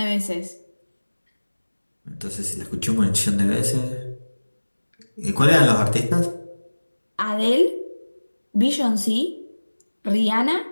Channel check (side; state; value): both; inverted; correlation -1.00